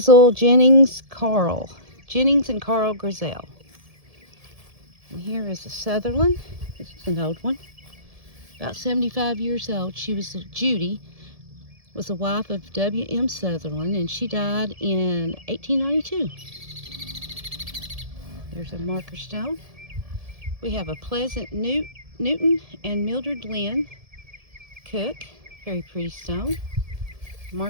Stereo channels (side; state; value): left; late; 1.7 ms